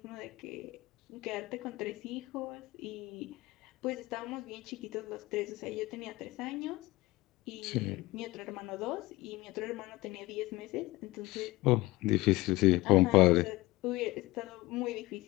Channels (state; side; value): quieter; right; 19.8 dB